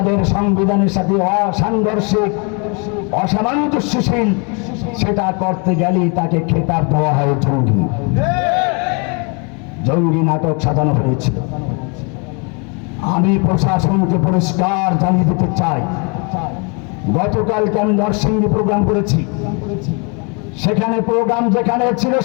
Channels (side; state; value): right; quieter; 34.2 dB